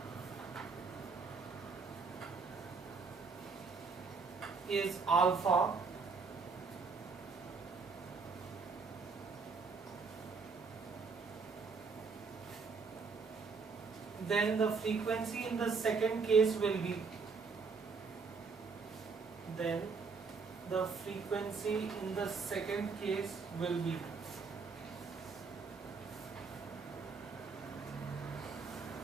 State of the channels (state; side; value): quieter; left; 4.8 dB